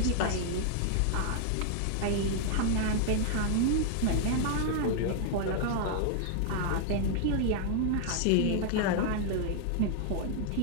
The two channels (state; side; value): different; both; correlation 0.00